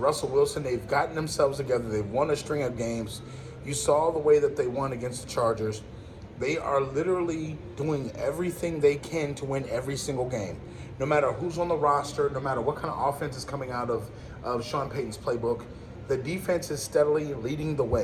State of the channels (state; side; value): identical; both; correlation 1.00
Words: Wilson, they've gotten themselves together. They've won a string of games. You saw the way that they won against the Chargers. They are literally doing everything they can to win every single game. No matter who's on the roster, no matter what kind of offense is coming out of Sean Payton's playbook, the defense is steadily leading the